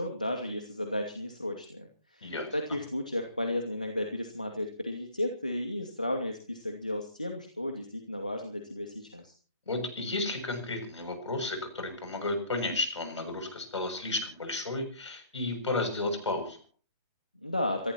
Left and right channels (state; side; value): inverted; both; correlation -0.56